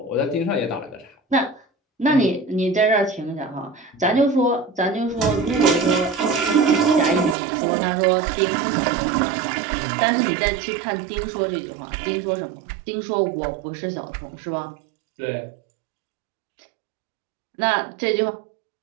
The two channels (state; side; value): drops out; left; at 7.4 s